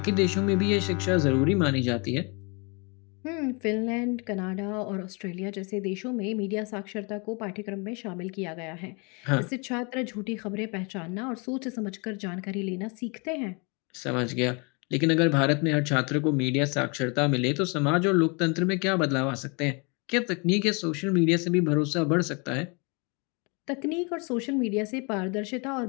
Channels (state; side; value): quieter; right; 32.1 dB